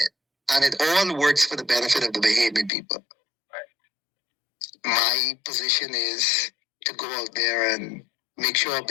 it. And it all works for the benefit of the Bahamian people. Right. My position is to go out there and make sure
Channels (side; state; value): right; drops out; at 2.7 s